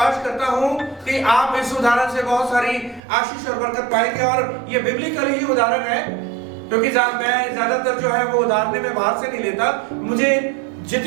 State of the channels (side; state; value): left; drops out; at 3.0 s